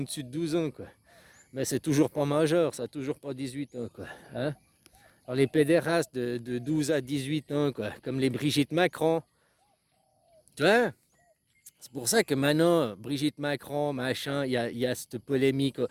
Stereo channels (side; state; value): both; identical; correlation 1.00